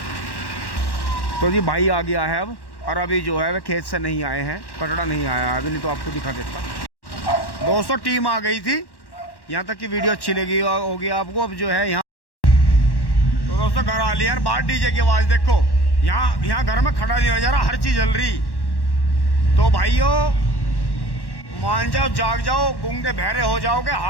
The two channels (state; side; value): late; right; 1.1 ms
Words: तो जी भाई आ गया है अब, और अभी जो है वह खेत से नहीं आए हैं, कटड़ा नहीं आया अभी, नहीं तो आपको दिखा देता। दोस्तों टीम आ गई थी, यहाँ तक की वीडियो अच्छी लगी होगी आपको। अब जो है यहाँ तो दोस्तों घर आ लिया यार, बाहर डीजे की आवाज़ देखो। यहाँ घर में खड़ा नहीं हो जा रहा, हर चीज़ जल रही। तो भाइयों मान जाओ, जाग जाओ, गूंगे बहरे हो जाओगे,